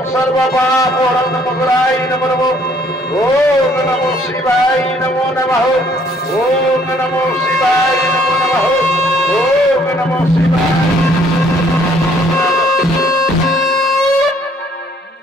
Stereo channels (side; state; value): both; normal; correlation 0.63